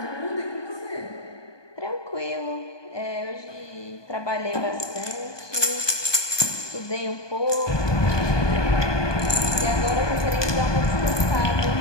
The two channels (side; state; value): right; late; 1.2 ms